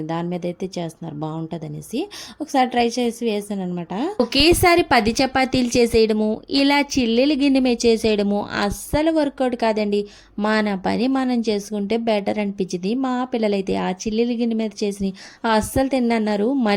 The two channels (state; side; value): identical; both; correlation 1.00